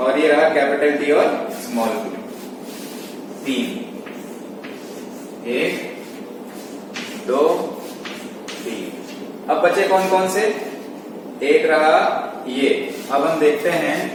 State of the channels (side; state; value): both; identical; correlation 1.00